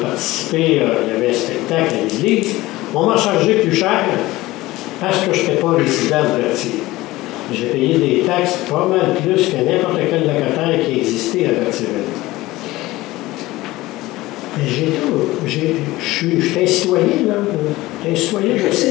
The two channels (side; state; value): right; quieter; 18.5 dB